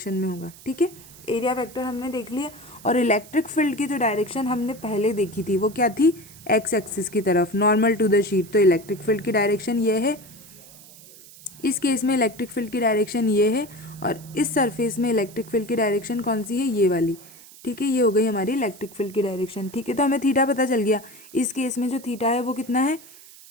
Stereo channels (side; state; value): right; noise; hiss, 20 dB below the sound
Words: में होगा। ठीक है, एरिया वेक्टर हमने देख लिया। और इलेक्ट्रिक फील्ड की जो डायरेक्शन हमने पहले देखी थी वो क्या थी, एक्स एक्सिस की तरफ, नॉर्मल टू द शीट। तो इलेक्ट्रिक फील्ड की डायरेक्शन ये है, इस केस में इलेक्ट्रिक फील्ड की डायरेक्शन ये है, और इस सरफेस में इलेक्ट्रिक फील्ड की डायरेक्शन कौन सी है, ये वाली। ठीक है, ये हो गई हमारी इलेक्ट्रिक फील्ड की डायरेक्शन। ठीक है, तो हमें थीटा पता चल गया। इस केस में जो थीटा है वो कितना है,